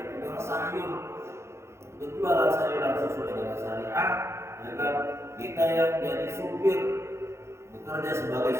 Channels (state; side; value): late; left; 0.13 ms